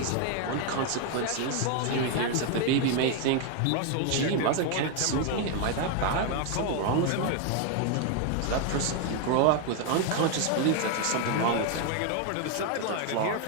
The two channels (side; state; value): both; different; correlation 0.01